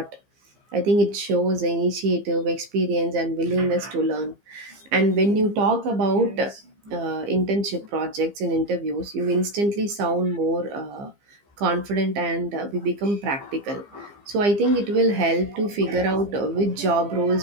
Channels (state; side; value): late; left; 15 ms